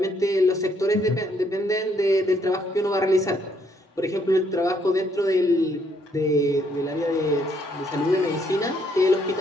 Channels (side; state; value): both; normal; correlation 0.70